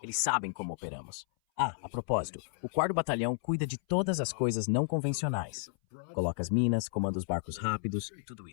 Eles sabem como operamos. A propósito, o 4º Batalhão cuida de todas as coisas não convencionais. Coloca as minas, comanda os barcos rápidos, tudo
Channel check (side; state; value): right; silent; 56 dB below the other